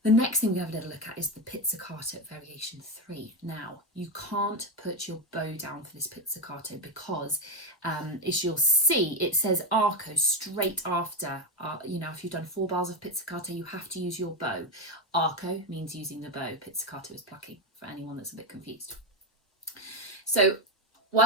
The next thing we have a little look at is the pizzicato variation 3. Now, you can't put your bow down for this pizzicato because, as you'll see, it says arco straight after. You know, if you've done 4 bars of pizzicato, you have to use your bow. Arco means using the bow. Pizzicato is plucking, for anyone that's a bit confused. So what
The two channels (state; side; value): normal; both; correlation 0.11